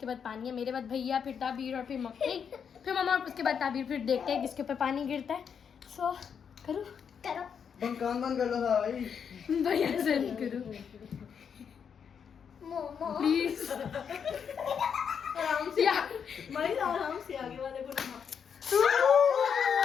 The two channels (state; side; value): quieter; right; 7.2 dB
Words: बाद पानी है. मेरे बाद भैया, फिर ताबीर और फिर मम्मी, फिर मम्मा और उसके बाद ताबीर. फिर देखते हैं किसके ऊपर पानी गिरता है. So करो. कान बंद कर लो भाई. भैया से करो प्लीज. आराम से. भाई आराम से आगे वाले को ना.